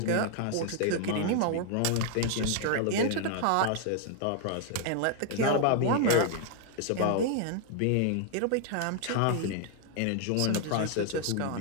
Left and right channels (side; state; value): both; different; correlation 0.00